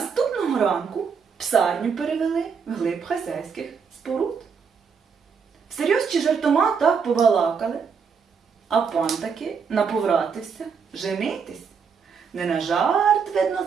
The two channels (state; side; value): quieter; left; 6.1 dB